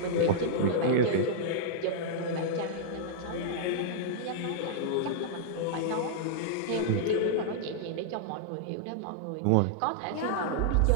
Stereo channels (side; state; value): both; different; correlation -0.02